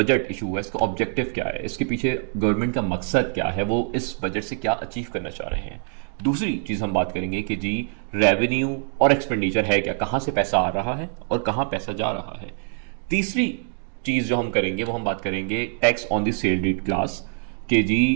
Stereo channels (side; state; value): left; silent; 59 dB below the other